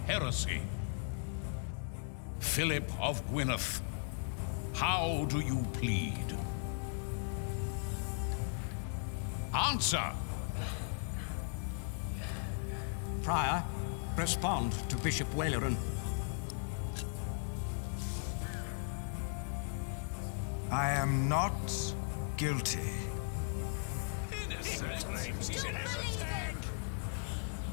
Philip of Gwynedd, how do you plead? Answer! Prior, respond to Bishop Waileron. I am not guilty.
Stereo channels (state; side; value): silent; right; 53 dB below the other